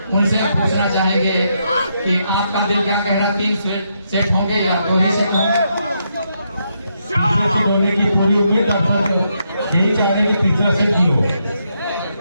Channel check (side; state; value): both; inverted; correlation -0.79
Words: उनसे पूछना चाहेंगे कि आपका दिल क्या कह रहा है, 3 सेट होंगे या 2 ही सेट होंगे? होने की पूरी उम्मीद यही चाहेंगे कि तीसरा सेट ही हो।